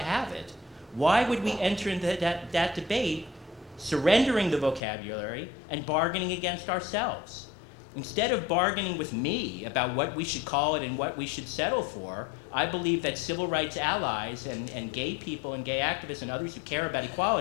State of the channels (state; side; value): drops out; right; at 4.8 s